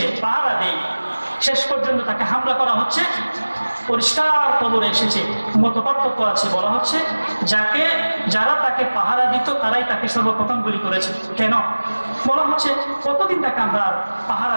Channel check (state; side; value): inverted; both; correlation -1.00